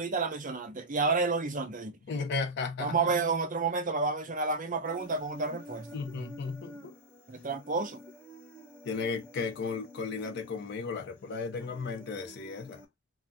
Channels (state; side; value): normal; both; correlation -0.03